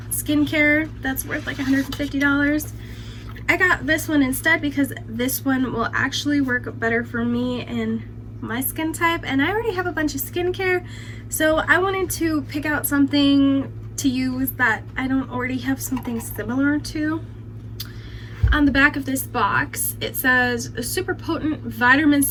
skincare that's worth like $150. I got this one instead because this one will actually work better for me and my skin type, and I already have a bunch of skincare, so I wanted to pick out something to use that I don't already have something similar to. On the back of this box, it says a super potent vitamin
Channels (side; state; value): both; identical; correlation 1.00